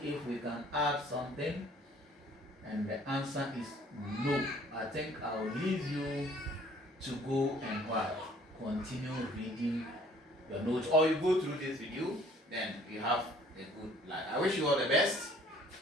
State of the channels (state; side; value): normal; both; correlation 0.56